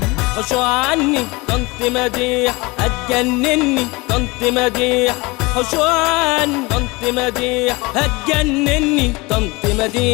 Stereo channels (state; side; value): quieter; right; 24.3 dB